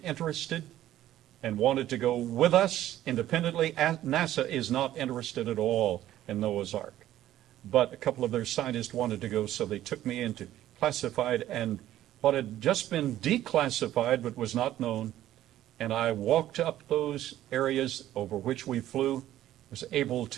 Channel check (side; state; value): left; quieter; 13.2 dB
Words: and wanted to go with us independently. NASA is not interested at all in Noah's Ark. But a couple of their scientists wanted to go, so they took me into classified, and what had just been declassified but was not known, and I walked up those areas over which we flew, was able